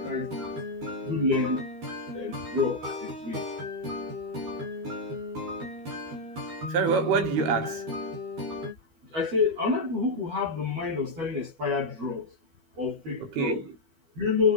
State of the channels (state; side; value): late; left; 12 ms